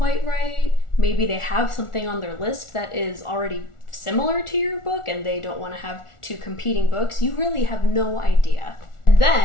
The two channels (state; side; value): late; right; 1.4 ms